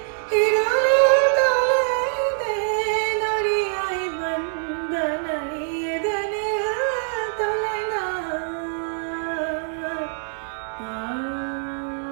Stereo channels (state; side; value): silent; left; 61 dB below the other